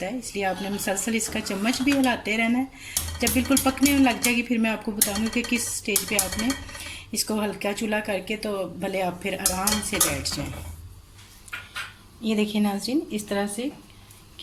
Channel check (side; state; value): both; identical; correlation 1.00